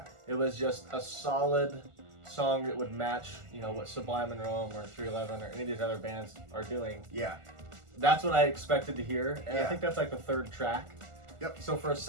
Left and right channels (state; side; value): late; left; 1.4 ms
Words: It was just a solid song that would match, what Sublime and Rome or 311 or any of these other bands are doing. Yeah. That's what I expected to hear, and I think that's like the third track. Yep. So for a